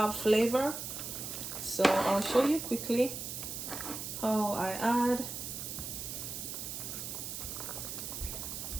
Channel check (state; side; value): noise; right; hiss, 6 dB below the sound